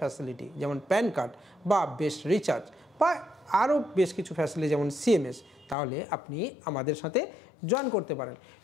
যেমন প্যান কার্ড বা বেস্ট রিচার্জ বা আরও বেশ কিছু ফ্যাসিলিটি যেমন সিএমএস, তাহলে আপনি আমাদের সাথে জয়েন করতে পারেন।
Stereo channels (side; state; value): right; drops out; at 5.8 s